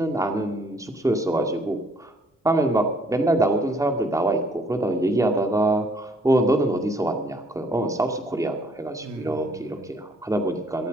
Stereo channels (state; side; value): normal; both; correlation 0.63